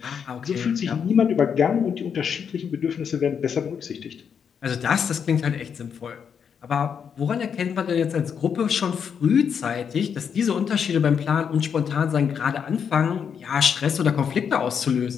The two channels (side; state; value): right; quieter; 7.2 dB